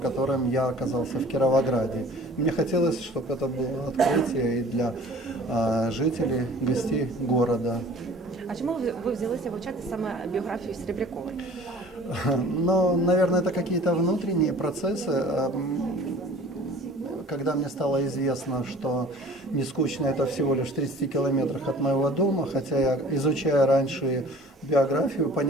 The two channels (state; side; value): normal; both; correlation 0.47